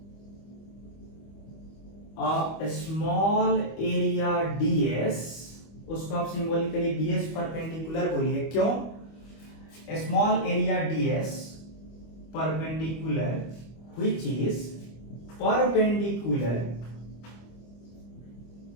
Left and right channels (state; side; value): late; right; 25 ms